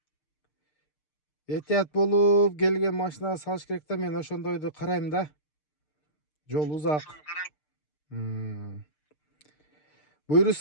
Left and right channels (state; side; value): late; right; 6.6 ms